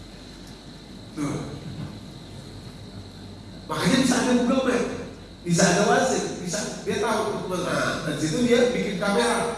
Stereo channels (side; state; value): both; identical; correlation 1.00